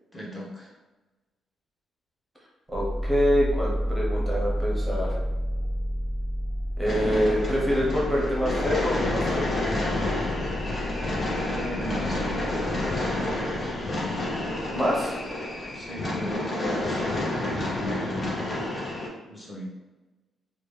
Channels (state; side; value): normal; both; correlation 0.85